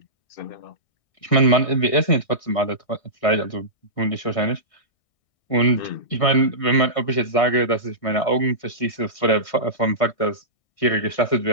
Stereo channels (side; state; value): right; late; 1.6 ms